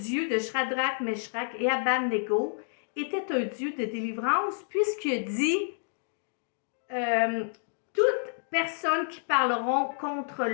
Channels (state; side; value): silent; right; digital silence